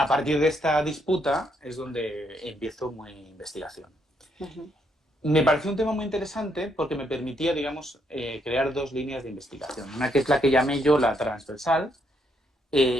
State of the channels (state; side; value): normal; both; correlation 0.74